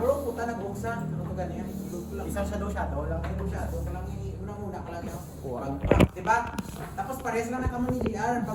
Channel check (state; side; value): identical; both; correlation 1.00